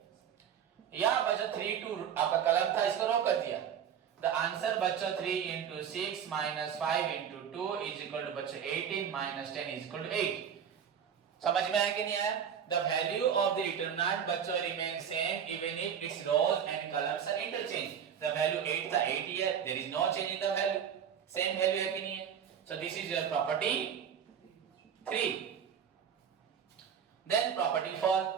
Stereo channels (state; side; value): quieter; left; 8.1 dB